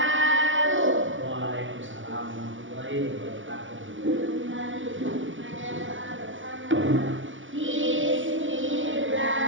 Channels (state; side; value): late; left; 0.56 ms